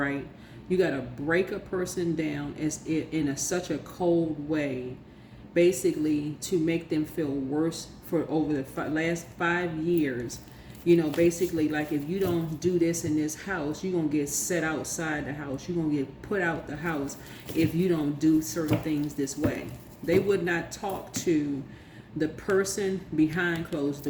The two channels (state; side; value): identical; both; correlation 1.00